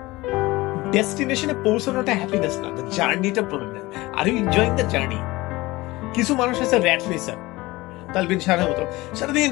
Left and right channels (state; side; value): quieter; right; 20.4 dB